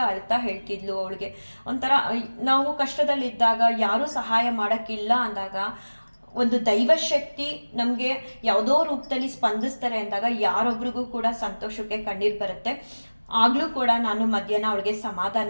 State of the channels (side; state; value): both; inverted; correlation -1.00